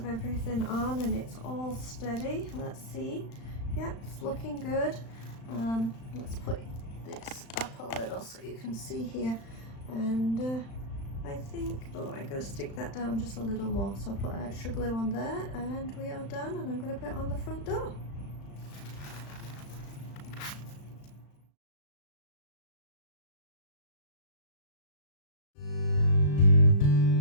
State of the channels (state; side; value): late; right; 35 ms